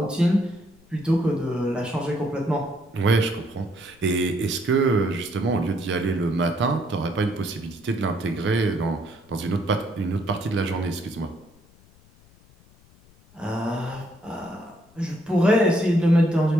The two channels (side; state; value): left; noise; rumble, 28 dB below the sound